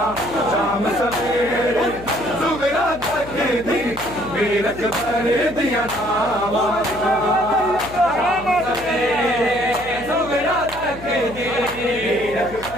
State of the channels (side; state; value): left; noise; hum, 16 dB below the sound